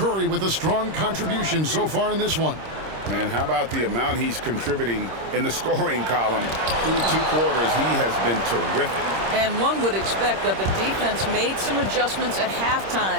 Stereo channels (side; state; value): left; late; 26 ms